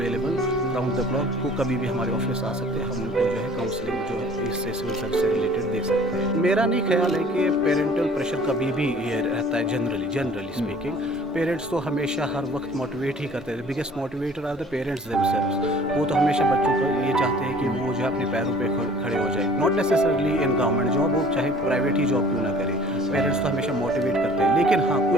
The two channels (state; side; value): normal; both; correlation 0.50